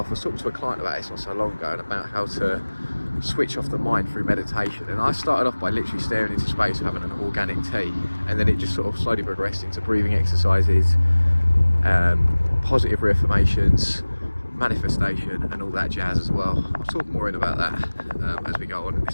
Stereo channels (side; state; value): both; inverted; correlation -1.00